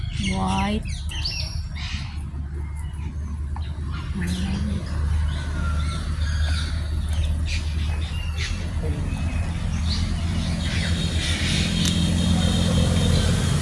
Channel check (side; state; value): both; identical; correlation 1.00